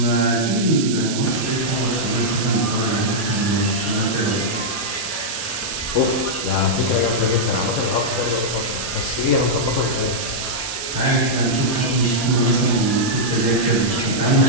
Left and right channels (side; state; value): right; noise; hiss, 6 dB below the sound